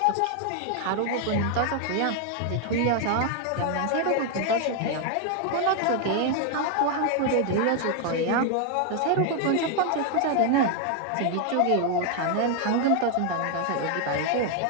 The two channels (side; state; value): both; different; correlation 0.00